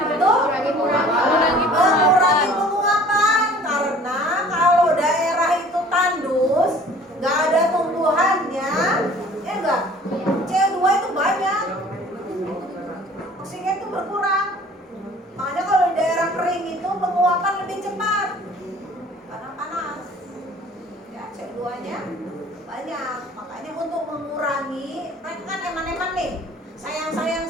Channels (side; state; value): both; normal; correlation 0.50